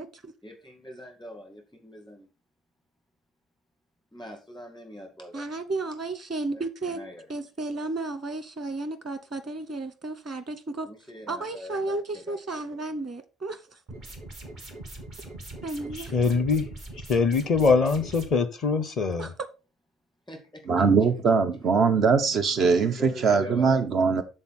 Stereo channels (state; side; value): normal; both; correlation 0.59